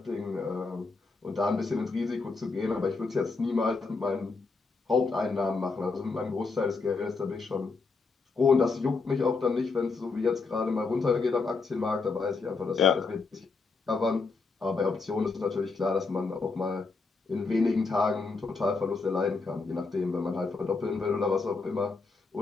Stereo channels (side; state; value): right; quieter; 4.2 dB